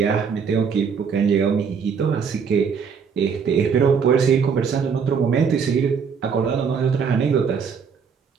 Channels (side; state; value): left; quieter; 6.3 dB